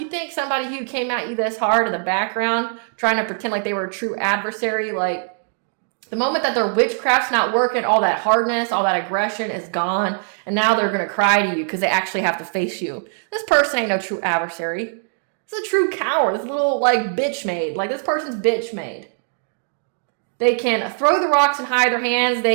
think somebody who came at you this hard in the background, trying to pretend like they were a true adversary, like, the moment that their witchcraft's not working, all that hardness, all that aggression is gone. And now they're going to cry to you because they actually have to face you. This person ain't no true adversary. This is a true coward. This little, like, bitch made. Like, this person's bitch made. They can throw the rocks and hide their hands.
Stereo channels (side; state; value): left; silent; digital silence